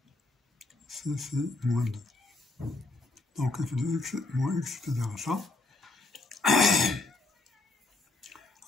ici c'est moins 2. Donc f de x moins x est égal à ça.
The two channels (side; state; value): right; quieter; 3.2 dB